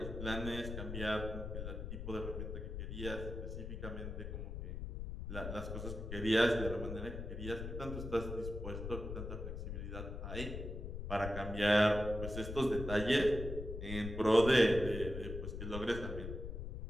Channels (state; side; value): noise; left; rumble, 6 dB below the sound